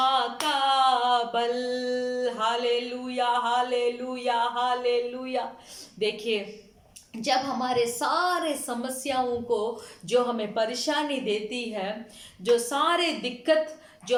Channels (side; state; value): both; identical; correlation 1.00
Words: का बल। Hallelujah, hallelujah, hallelujah. देखिए, जब हमारे सारे समस्याओं को जो हमें परेशानी देती है, जो सारे दिक्कत